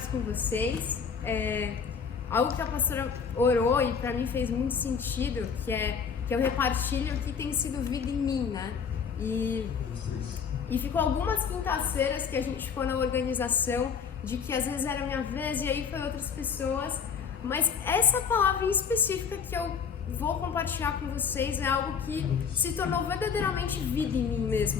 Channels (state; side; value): quieter; right; 6.5 dB